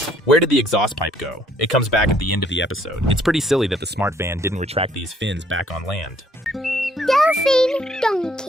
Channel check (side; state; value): both; normal; correlation 0.64